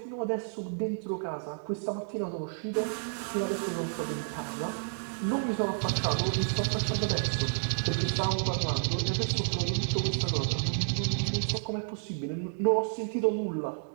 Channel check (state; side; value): silent; left; digital silence